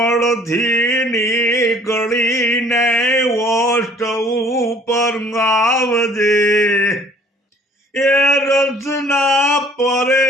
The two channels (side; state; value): both; normal; correlation 0.55